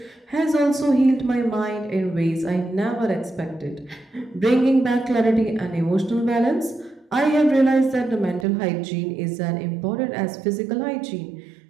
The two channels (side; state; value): left; drops out; at 8.5 s